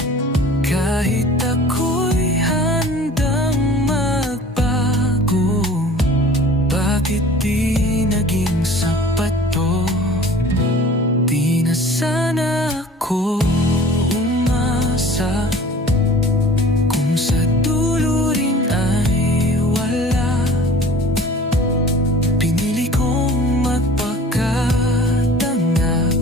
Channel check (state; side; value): normal; both; correlation 0.45